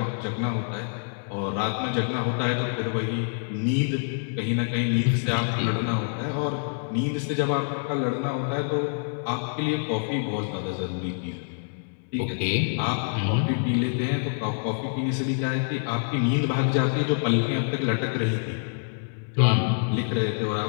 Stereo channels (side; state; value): right; silent; digital silence